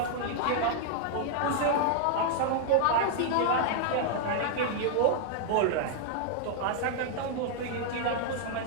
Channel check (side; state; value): both; different; correlation -0.01